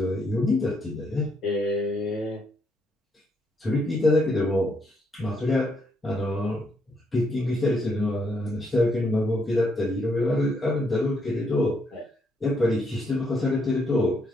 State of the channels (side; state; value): both; normal; correlation 0.75